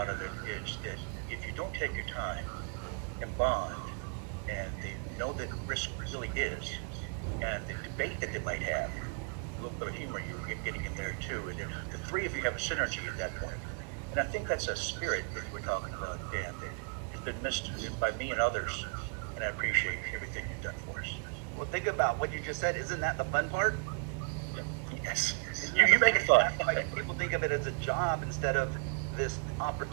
of it is that if you don't take your time and bond, and they know that risk really is, and the debate that they might have, a little bit of humor you're getting in there too, and the three of you have a synergy at that point. And I think that's a spirit that we're talking about, Dan, that has been missed by me and others, and I appreciate everything you've done for us. Well, think about what you just said. Isn't that the fun part? Yes. You make it fun. Like, people of it as a job instead of this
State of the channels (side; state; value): left; quieter; 39.8 dB